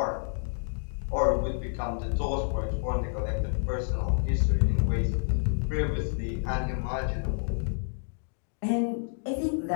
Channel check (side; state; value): right; silent; digital silence